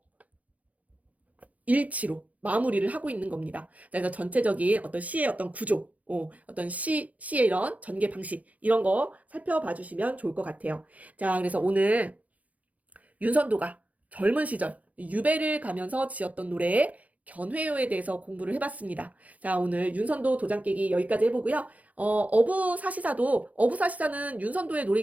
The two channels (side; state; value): left; late; 0.072 ms